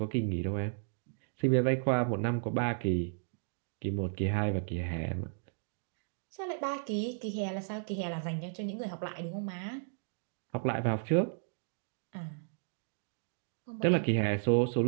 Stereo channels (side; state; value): left; silent; digital silence